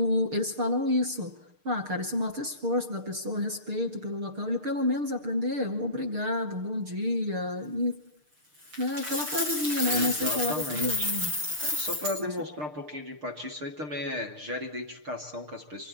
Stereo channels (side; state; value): left; late; 6.6 ms